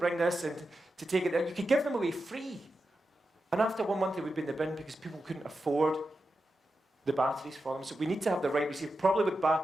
this and to take it. You could give them away free. And after 1 month, it would be in the bin because people couldn't afford the batteries for them. So we need to have the right receiver, probably with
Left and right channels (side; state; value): both; normal; correlation 0.90